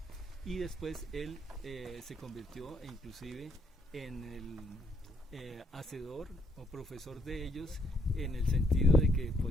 y después él se convirtió inclusive en el hacedor o profesor de ellos, en el sentido de que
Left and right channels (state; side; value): normal; both; correlation 0.71